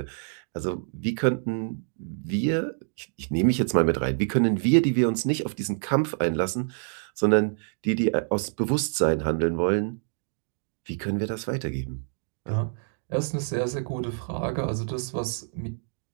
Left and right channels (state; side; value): silent; left; digital silence